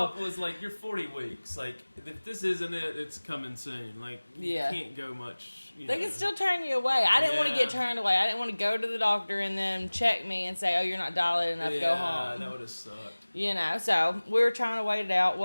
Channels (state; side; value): inverted; both; correlation -1.00